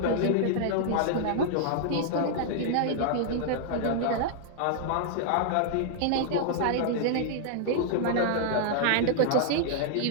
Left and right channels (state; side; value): different; both; correlation -0.01